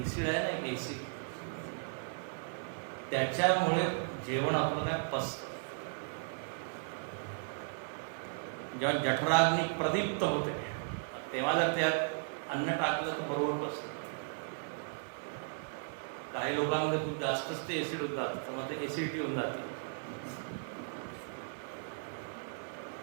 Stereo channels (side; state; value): left; silent; 54 dB below the other